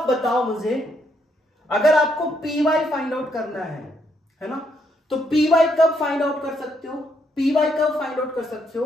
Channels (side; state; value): both; normal; correlation 0.74